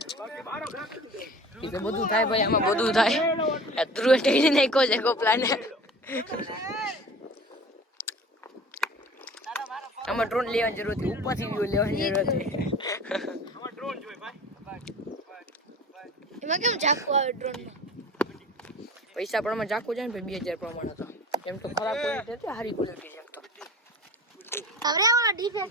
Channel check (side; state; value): both; normal; correlation 0.40